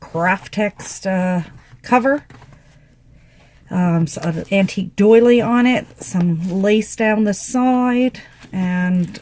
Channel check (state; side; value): identical; both; correlation 1.00